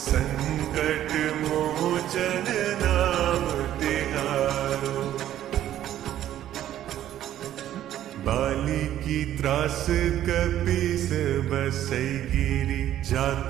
संकट मोचन नाम तिहारो। बाली की त्रास कपीस बसई गिरी,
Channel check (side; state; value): left; quieter; 12.1 dB